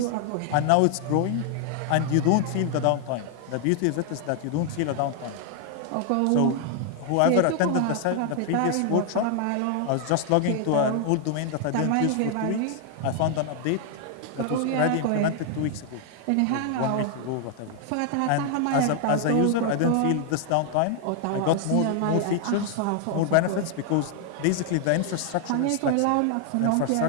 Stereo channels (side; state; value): both; different; correlation 0.00